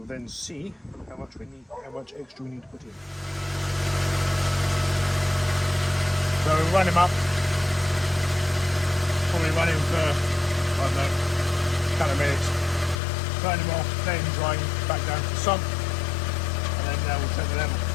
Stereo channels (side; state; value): right; drops out; at 13.0 s